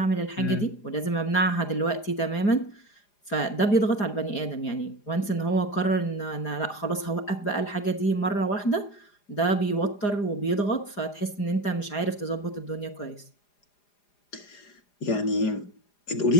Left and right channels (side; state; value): right; late; 4.9 ms